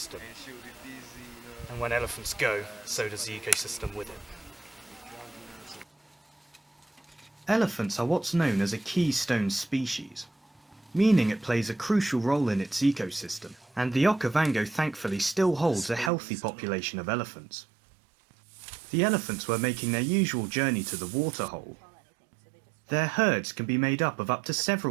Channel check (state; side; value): drops out; left; at 16.1 s